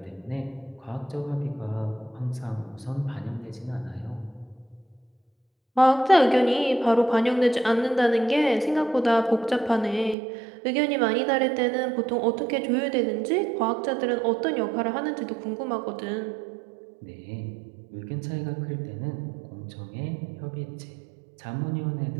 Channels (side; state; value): left; drops out; at 10.2 s